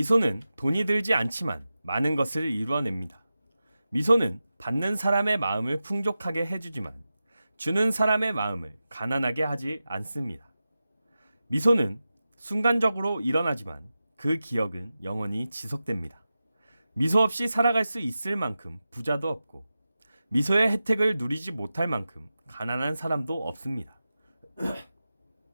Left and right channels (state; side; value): inverted; both; correlation -0.93